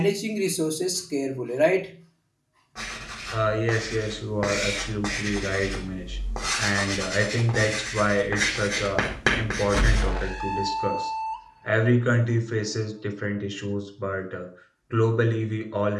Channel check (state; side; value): identical; both; correlation 1.00